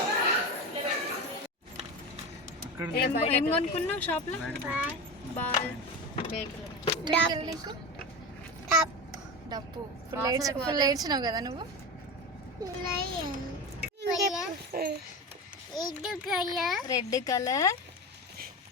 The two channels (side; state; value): both; normal; correlation 0.24